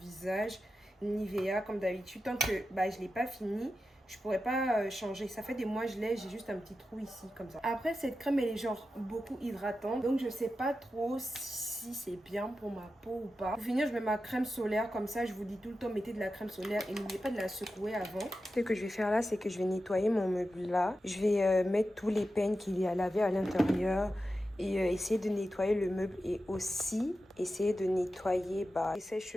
Nivea, comme d'habitude. Tant que je l'ai pas fini, je pourrais pas changer. Ça fait des mois je l'ai, j'ai juste un petit trou ici comme ça. Après cette crème elle est genre beaucoup hydratante. Donc je sais pas trop si c'est bien pour ma peau ou pas. Pour finir je mets ma crème solaire comme ça. Je vous dis tout le temps mettez de la crème solaire et n'oubliez pas de la secouer avant. Ce que je vais faire là c'est que je vais nettoyer mon meuble là. Je vais mettre tous les peignes qu'il y a à laver à l'intérieur. Et essayer de nettoyer le meuble et aussi essayer de nettoyer les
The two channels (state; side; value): normal; both; correlation 0.91